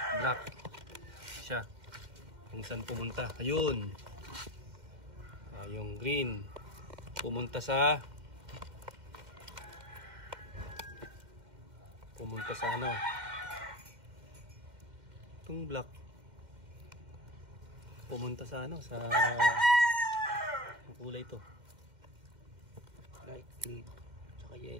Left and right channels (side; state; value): left; late; 2.1 ms